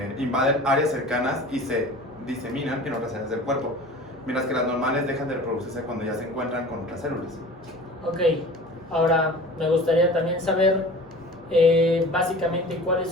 invaden áreas cercanas y se diseminan en otras áreas del cuerpo, mientras que las normales dejan de reproducirse cuando ya se encuentran con otras células. Ok, ahora me gustaría también saber básicamente cuáles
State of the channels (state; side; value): normal; both; correlation 0.40